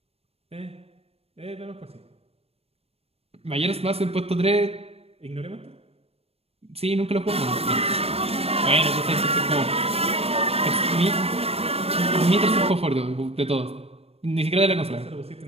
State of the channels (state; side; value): late; left; 0.29 ms